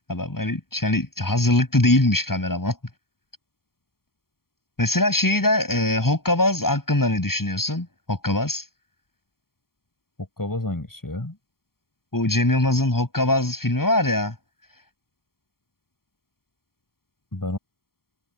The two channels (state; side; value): late; right; 0.93 ms